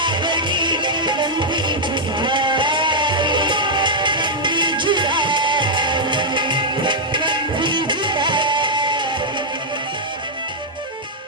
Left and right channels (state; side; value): normal; both; correlation -0.04